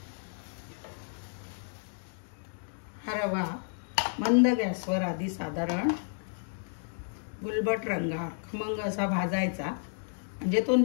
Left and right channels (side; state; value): right; silent; digital silence